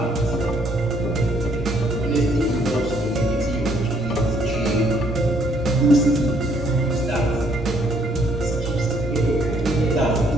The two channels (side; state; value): both; normal; correlation 0.66